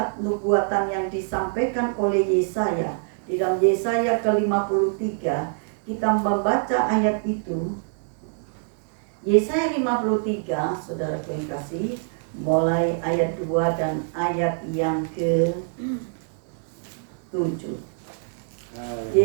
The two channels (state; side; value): silent; left; 62 dB below the other